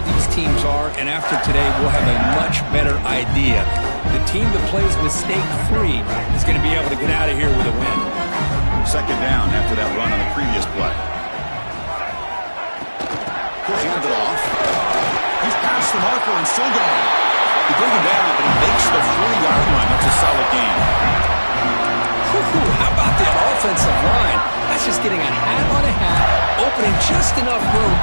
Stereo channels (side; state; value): both; inverted; correlation -1.00